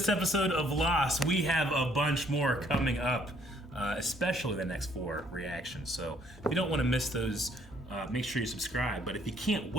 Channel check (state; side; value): normal; both; correlation 0.64